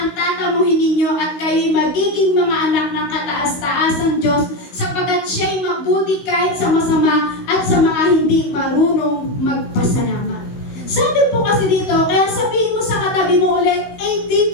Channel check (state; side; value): late; right; 16 ms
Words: ang tatamuhin ninyo at kayo'y magiging mga anak ng kataas-taasang Diyos sapagkat siya'y mabuti kahit sa masama at sa mga hindi marunong magpasalamat. Sabi po kasi dito, kaya sabihin mo sa katabi mo ulit, a